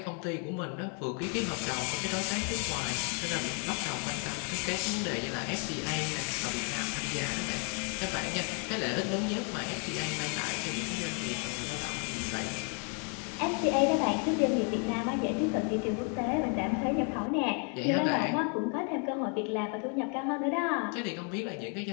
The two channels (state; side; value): quieter; right; 39.3 dB